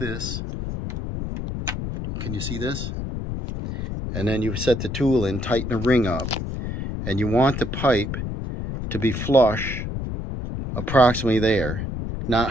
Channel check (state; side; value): noise; left; rumble, 5 dB below the sound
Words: Can you see this? And then you set the tool in, tighten the ring up, and you want the pipe to be flush approximately there, not